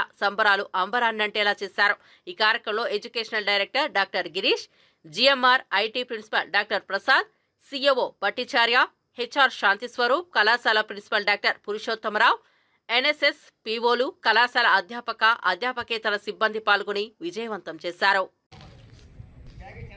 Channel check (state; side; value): identical; both; correlation 1.00